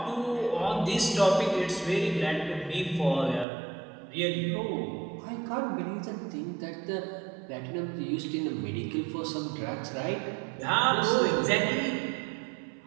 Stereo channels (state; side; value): drops out; left; at 3.5 s